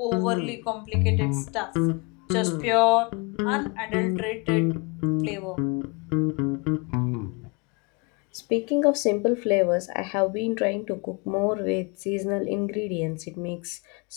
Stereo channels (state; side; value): quieter; right; 30.5 dB